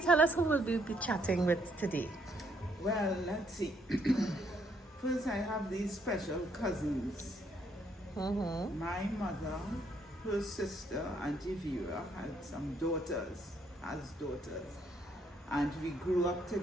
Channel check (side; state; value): both; normal; correlation 0.70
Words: tell us who will we be chatting with today? Well, let's see. First, I have these special cousins. My mother, her sister, Auntie Vera, had some daughters, and we grew up